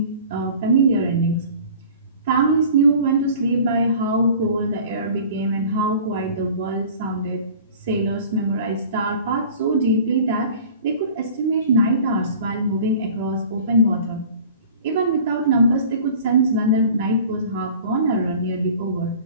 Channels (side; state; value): both; inverted; correlation -0.44